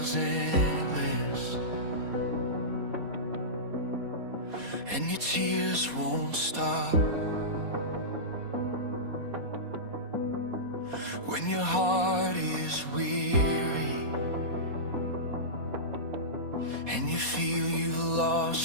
endless and your tears won't stop, when your heart is weary and you feel you've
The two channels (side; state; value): left; late; 4.2 ms